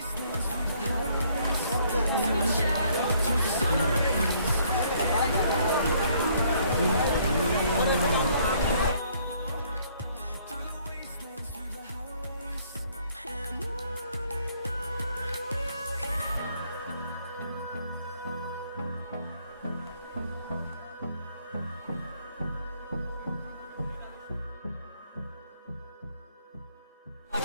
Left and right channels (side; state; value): both; inverted; correlation -0.64